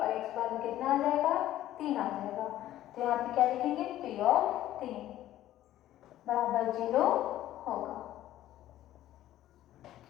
x बराबर कितना आ जाएगा, 3 आ जाएगा। तो यहाँ पे क्या लिखेंगे, P ऑफ 3 बराबर 0 होगा।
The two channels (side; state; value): right; quieter; 13.5 dB